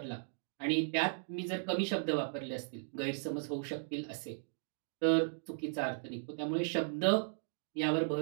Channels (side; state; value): left; silent; digital silence